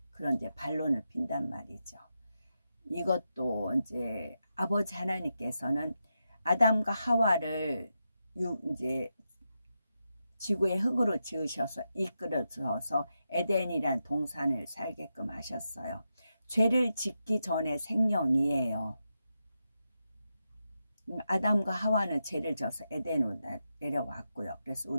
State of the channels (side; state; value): both; inverted; correlation -0.87